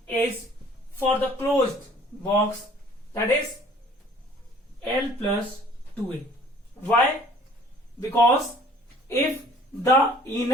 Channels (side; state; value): both; normal; correlation 0.53